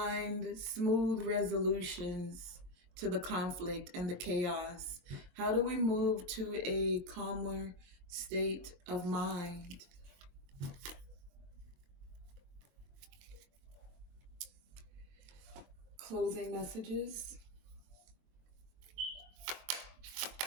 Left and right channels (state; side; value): late; left; 22 ms